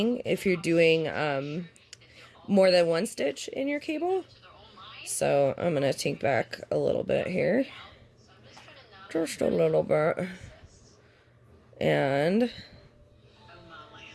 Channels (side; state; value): both; identical; correlation 1.00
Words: if you're doing more than one stitch in your cable. So I'm going to take back a little bit here. Just a little bit. And